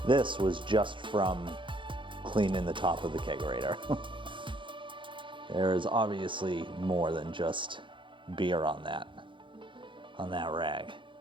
This was just from cleaning the top of the kegerator. There is obviously more than just beer on that rag.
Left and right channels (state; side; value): late; left; 0.24 ms